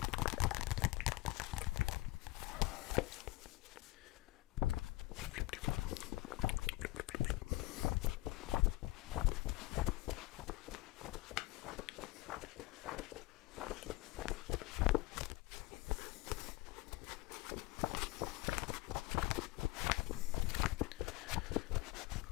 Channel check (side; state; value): right; quieter; 20.0 dB